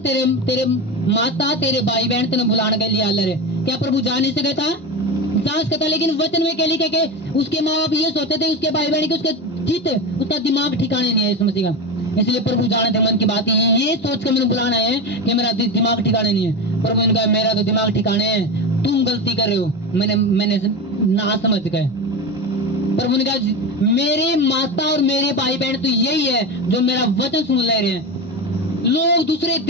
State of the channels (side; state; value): both; normal; correlation 0.21